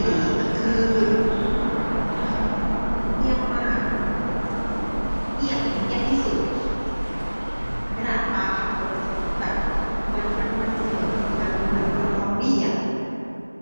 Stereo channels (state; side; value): inverted; both; correlation -1.00